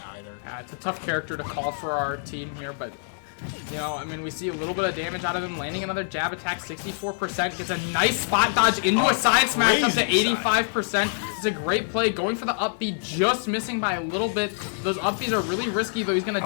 either. It's a tough character to call for our team here, but you know, I mean, we see a little bit of damage out of him, landing another jab attack, 64%, gets a nice spot dodge into a side smash up to 85%. It's a great play, going for the up B, just missing by a little bit. Those up Bs are really risky, though. He's going to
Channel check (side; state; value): right; silent; digital silence